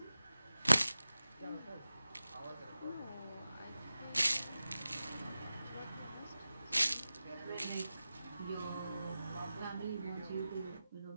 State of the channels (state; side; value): inverted; both; correlation -0.95